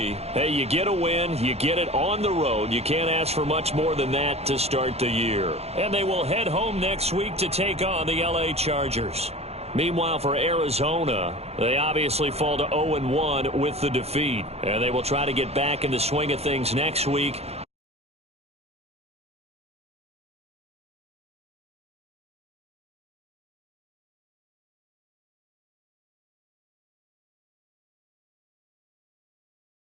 hey, you get a win, you get it on the road. You can't ask for much more than that to start the year. And they will head home next week to take on the LA Chargers. Meanwhile, for Arizona, they obviously fall to 0-1 with the defeat. And they will try to get back in the swing of things next week.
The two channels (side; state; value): left; late; 0.30 ms